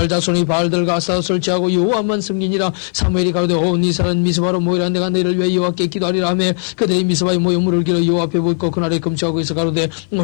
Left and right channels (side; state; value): right; silent; 56 dB below the other